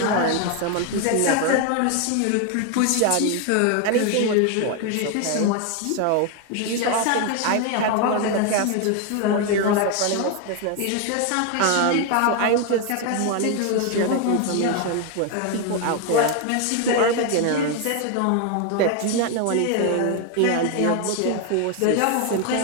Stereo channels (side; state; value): both; different; correlation 0.01